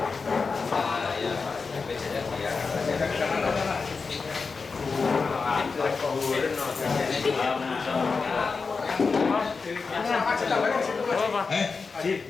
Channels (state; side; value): quieter; right; 4.7 dB